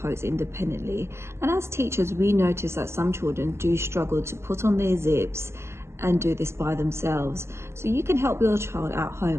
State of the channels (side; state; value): left; late; 0.13 ms